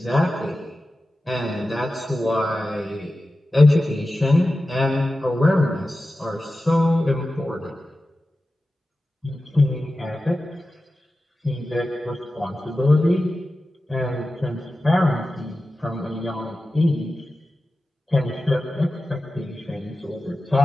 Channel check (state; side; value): normal; both; correlation 0.94